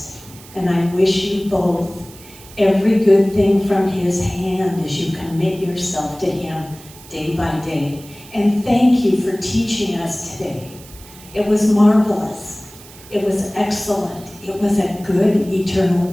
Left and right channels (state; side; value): noise; right; hiss, 20 dB below the sound